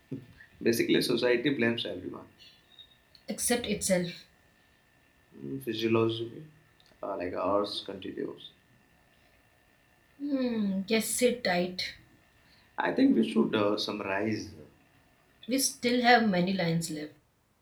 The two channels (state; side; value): identical; both; correlation 1.00